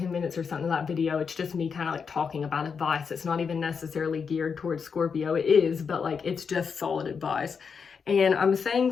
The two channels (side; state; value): right; quieter; 6.0 dB